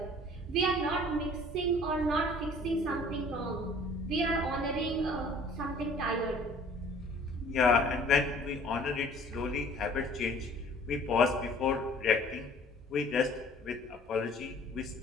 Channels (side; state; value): both; normal; correlation 0.51